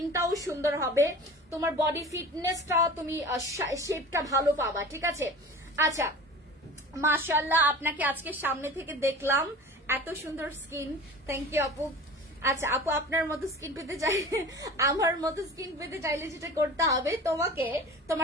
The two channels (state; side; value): normal; both; correlation 0.38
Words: সুন্দর হবে, তোমার বডি ফিটনেসটা, তুমি শেপটা ভালো পাবা। ঠিক আছে, আচ্ছা মাশাআল্লাহ, আপনাকে আজকে সামনে থেকে দেখলাম, এত সুন্দর স্কিন, থ্যাংক ইউ আপু। আচ্ছা আপু, আপনার মতো স্কিন পেতে চাইলে, আমার মতো স্কিন পেতে চাইলে যেটা করতে হবে, তোমাকে